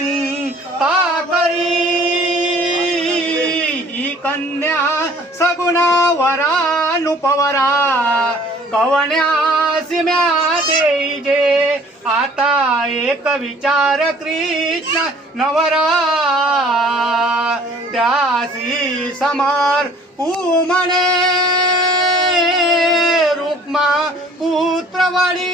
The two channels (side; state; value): both; normal; correlation 0.53